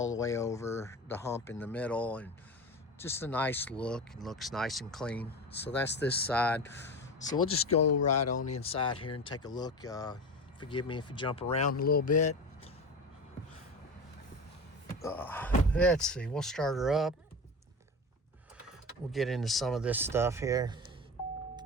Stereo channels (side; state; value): both; normal; correlation 0.27